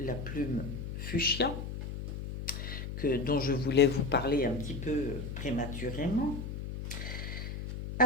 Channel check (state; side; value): noise; left; hum, 6 dB below the sound